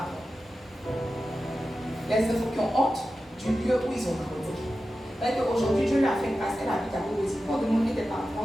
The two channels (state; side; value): normal; both; correlation 0.93